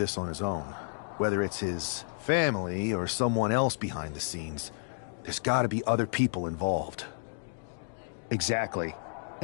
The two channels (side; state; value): right; silent; digital silence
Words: on his own. Whether it's his family or someone else behind the scenes, there's gotta be other people involved. Exactly.